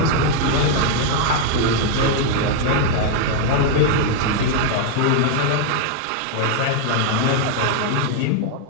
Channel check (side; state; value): both; different; correlation 0.00